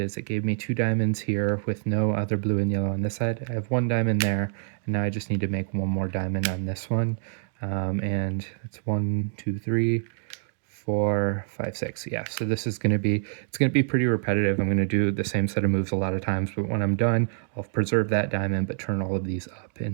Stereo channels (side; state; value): left; silent; digital silence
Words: it gave me 2 diamonds here with no other blue and yellow on this side. I have 1 diamond there, and now I just need to make 1 more diamond on this one. And it's 1, 2, 3, 4, 5, 6. Yeah, so this is going to be, it's going to be pretty repetitive. I'm going to do the same set of moves a lot of times, but when I'm done, I'll preserve that diamond, but turn all of these up